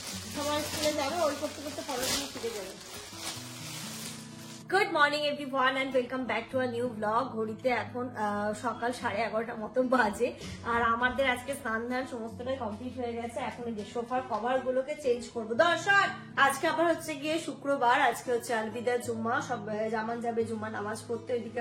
সবার স্কুলে যাবে, ওই করতে করতে পড়াশোনা শিখে যাবে। Good morning everyone and welcome back to a new blog. ঘড়িতে এখন সকাল 11:30 মতো বাজে, আর আমাদের আজকে স্নান ধান সমস্তটাই কমপ্লিট হয়ে গেছে। এখন এই যে সোফার কভার গুলোকে চেঞ্জ করবো। দর্শক, আজকে আবার হচ্ছে গিয়ে শুক্রবার, আজকে হচ্ছে আলবিদা জুম্মা, সব জামান যাবে জুম্মা নামাজ পড়তে। ওইদিকে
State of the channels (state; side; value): identical; both; correlation 1.00